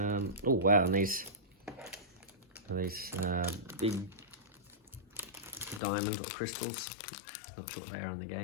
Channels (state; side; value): drops out; right; at 5.8 s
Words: Oh wow, and these big diamonds or crystals. Not sure what they are in the